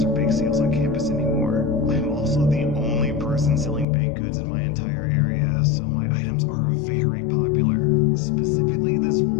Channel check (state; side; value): drops out; right; at 3.9 s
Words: bake sales on campus anymore. I'm also the only person selling baked goods in my entire area, so my items are very popular. Specifically, this